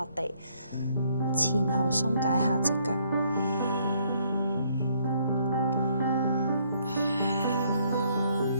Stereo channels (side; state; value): both; inverted; correlation -0.67